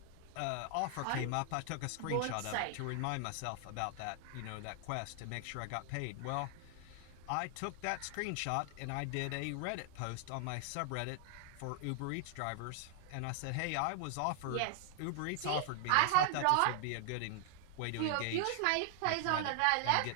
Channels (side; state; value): both; different; correlation 0.00